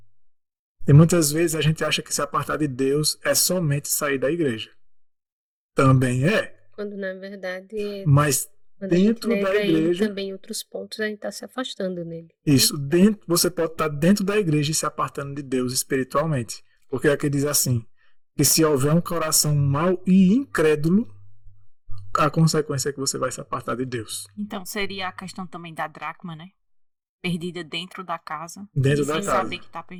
E muitas vezes a gente acha que se apartar de Deus é somente sair da igreja. Também é. Quando na verdade, Mas quando a gente dentro da nega ele igreja, também em outros pontos, a gente está se afastando dele. isso, dentro, você pode estar dentro da igreja e se apartando de Deus espiritualmente. Porque aqui diz assim, que se houver um coração mau e incrédulo, a consequência é que você vai se apartar de Deus. Então seria a questão também da dracma, né? Perdida dentro da casa. Dentro e da sem casa. saber que está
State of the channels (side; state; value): both; identical; correlation 1.00